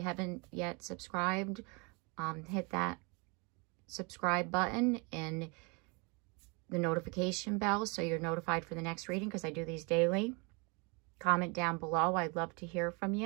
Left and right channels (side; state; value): left; quieter; 31.2 dB